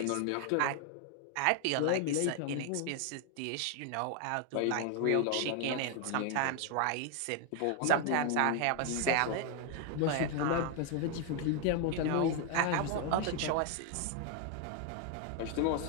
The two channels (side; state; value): both; different; correlation 0.00